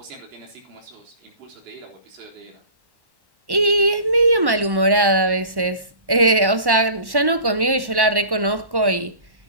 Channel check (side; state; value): left; late; 1.1 ms